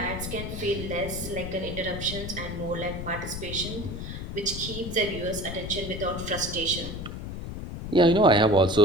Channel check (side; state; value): left; noise; rumble, 7 dB below the sound